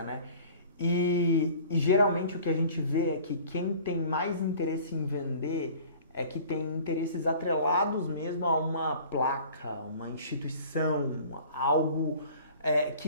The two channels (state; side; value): inverted; both; correlation -0.47